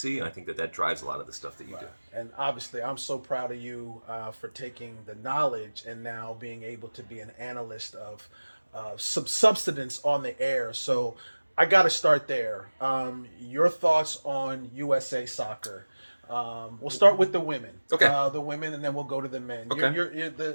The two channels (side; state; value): both; inverted; correlation -1.00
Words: and I think that drives a lot of the stuff that you do. And obviously, I'm so proud of you for taking the knowledge and now being able to be an analyst of some substance on the air. So I got to start there. Your thoughts on USA soccer? We'll start with the women. Okay. The women, and then we'll go to the men. Okay. You're